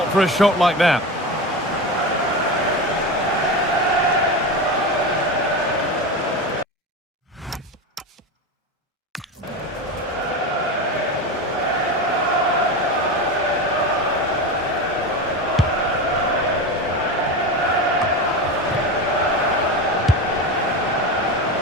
for a shot like that.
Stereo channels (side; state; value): both; normal; correlation 0.22